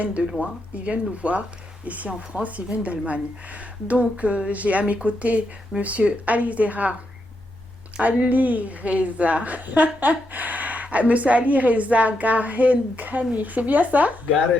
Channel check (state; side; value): normal; both; correlation 0.82